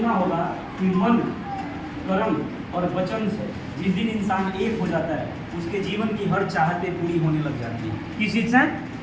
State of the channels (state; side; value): identical; both; correlation 1.00